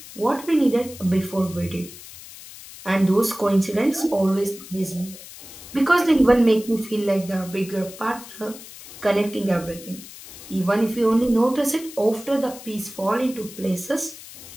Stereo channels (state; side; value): noise; left; hiss, 16 dB below the sound